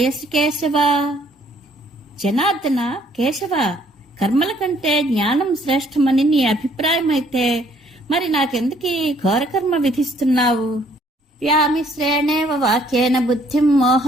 కేశవ. జనార్దన, కేశవ, కర్మల కంటే జ్ఞానం శ్రేష్టమని నీ అభిప్రాయమైతే మరి నాకెందుకీ ఘోరకర్మ విధిస్తున్నావు? వ్యామిశ్రేణేవ వాక్యేన బుద్ధిం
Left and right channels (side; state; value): both; normal; correlation 0.63